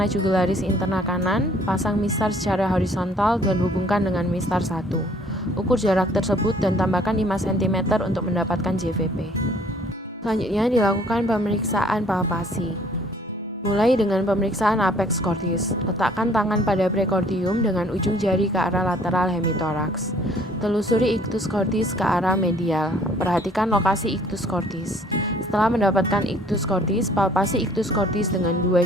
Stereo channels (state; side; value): normal; both; correlation 0.58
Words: jugularis interna kanan, pasang mistar secara horizontal dan hubungkan dengan mistar 1. Ukur jarak tersebut dan tambahkan 5 cm untuk mendapatkan JVP. Selanjutnya dilakukan pemeriksaan palpasi. Mulai dengan pemeriksaan apex cordis. Letakkan tangan pada prekordium dengan ujung jari ke arah lateral hemitoraks. Telusuri ictus cordis ke arah medial. Perhatikan lokasi ictus cordis. Setelah mendapatkan ictus cordis, palpasi ictus cordis dengan 2